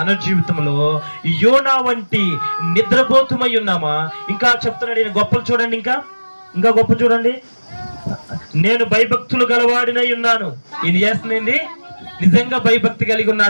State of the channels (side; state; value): both; inverted; correlation -1.00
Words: జీవితంలో యోనా వంటి నిద్రపోతుమై ఉన్నామా? ఇంకా చెప్తున్నాడు ఈయన గొప్పలు చూడండి, ఇంకా గొప్ప చూడండి. నేను భయభక్తులు గలవాడినై ఉన్నాను. ఈయన చేస్తుంది నిజంగా భయభక్తి కలిగి